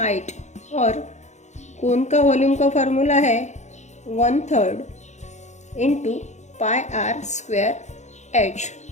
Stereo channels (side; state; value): right; late; 0.34 ms